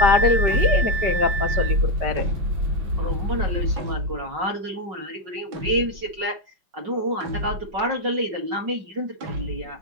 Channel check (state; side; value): late; left; 5.4 ms